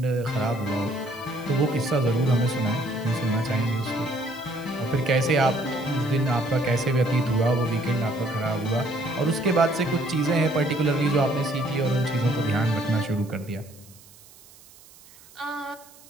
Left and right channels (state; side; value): noise; right; hiss, 24 dB below the sound